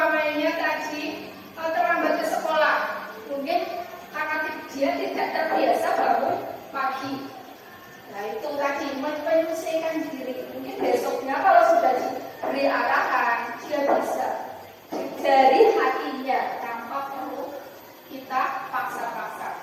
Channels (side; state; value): both; identical; correlation 1.00